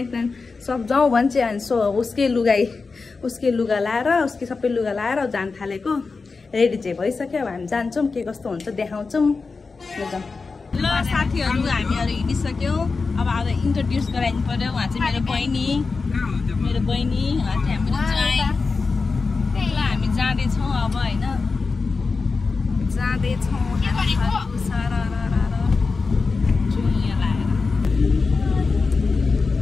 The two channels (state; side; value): quieter; right; 4.3 dB